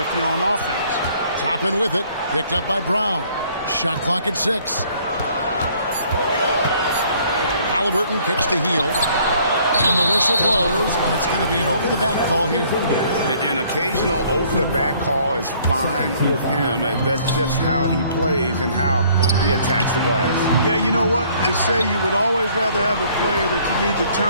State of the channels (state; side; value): inverted; both; correlation -0.60